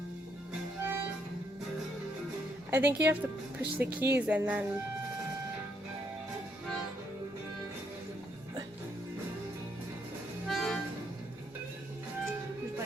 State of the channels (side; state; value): both; normal; correlation 0.74